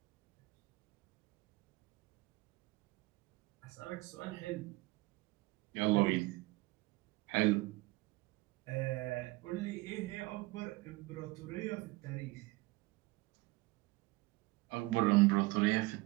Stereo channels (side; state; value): left; quieter; 22.1 dB